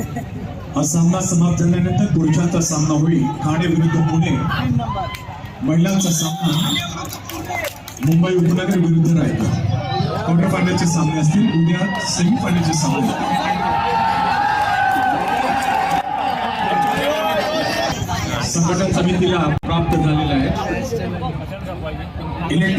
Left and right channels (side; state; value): both; identical; correlation 1.00